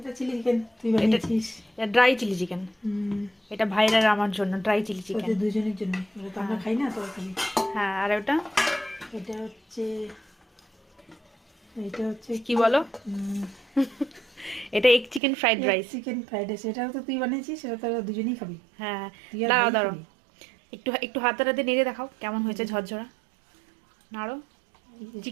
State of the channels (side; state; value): left; drops out; at 15.2 s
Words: চিলি চিকেন তুই এটা বানিয়েছিস? Dry chilli chicken. হুম। এটা ভাইরা আর আমার জন্য ড্রাই চিলি চিকেন। ওদের দুজনের জন্য, ওটা তো আমরা হ্যাঁ খাই না তো খালি। হ্যাঁ, আর ওটা এটা হচ্ছে, এটা হচ্ছে কি বলো? এটা egg chicken fried rice. Chicken fried rice. এটাও তো তুই বানিয়েছিস, সেটা তো আমরা দুজনেই খাবি। হ্যাঁ, তুই আর দাঁড়াও ভাই দাঁড়াও, খাবি। একটু একটু হাতে হাতে নেড়ে দেখাও কেমন হয়েছে, ঝরঝরা। নাড়ো।